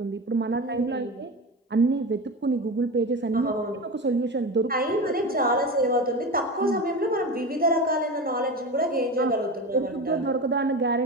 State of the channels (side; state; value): both; normal; correlation 0.26